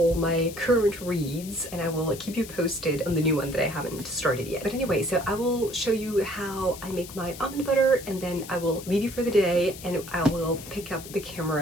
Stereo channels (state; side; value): noise; left; hiss, 14 dB below the sound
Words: my current reads, and I will keep you posted on the new one that I haven't started yet. But anyway, so I will show you how I make my almond butter, and then I will leave you for the day, and I will pick up the